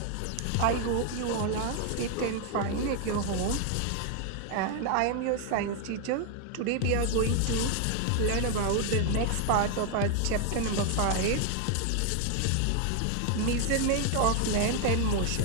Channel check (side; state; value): both; different; correlation 0.00